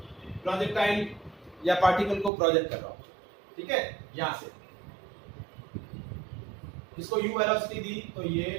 प्रोजेक्टाइल या पार्टिकल को प्रोजेक्ट कर रहा हूं। ठीक है, यहां से इसको u वेलोसिटी दी तो ये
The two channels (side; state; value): left; drops out; at 2.3 s